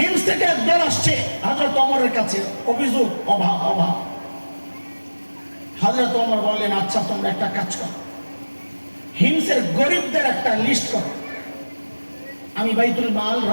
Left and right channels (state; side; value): inverted; both; correlation -1.00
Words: থেকে একদল আসছে হযরত ওমরের কাছে, অভিযোগ অভাব অভাব। হযরত ওমর বললেন, আচ্ছা তোমরা একটা কাজ করো, হিমসের গরিবদের একটা লিস্ট করো, আমি বাইতুল মাল,